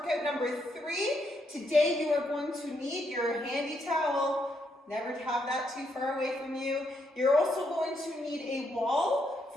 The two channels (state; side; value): normal; both; correlation 0.77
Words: number 3. Today you are going to need your handy towel. Never have that too far away from you. You're also going to need a wall